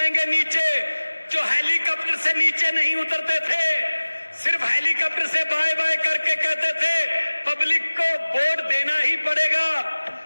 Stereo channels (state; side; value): inverted; both; correlation -1.00